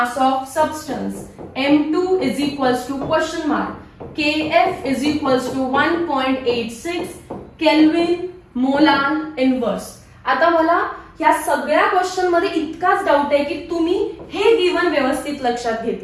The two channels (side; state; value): both; identical; correlation 1.00